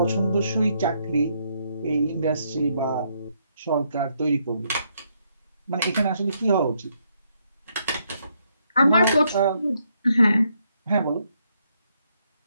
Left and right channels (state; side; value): inverted; both; correlation -0.75